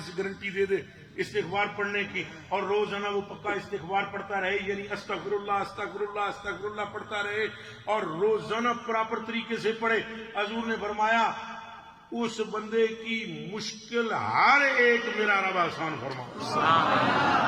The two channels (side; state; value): both; identical; correlation 1.00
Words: گارنٹی دے دے استغفار پڑھنے کی اور روزانہ وہ پکا استغفار پڑھتا رہے، یعنی استغفر اللہ استغفر اللہ استغفر اللہ پڑھتا رہے اور روزانہ پراپر طریقے سے پڑھے، حضور نے فرمایا اس بندے کی مشکل ہر ایک میرا رب آسان فرما.